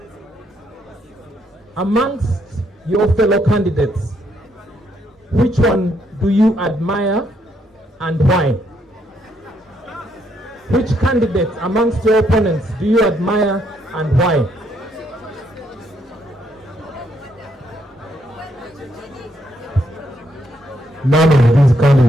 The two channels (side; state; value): both; normal; correlation 0.74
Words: Amongst your fellow candidates, which one do you admire and why? Which candidate amongst your opponents do you admire and why? None of these